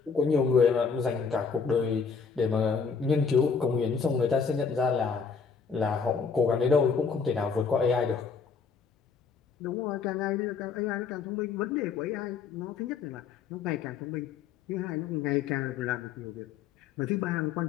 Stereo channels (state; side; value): quieter; right; 5.7 dB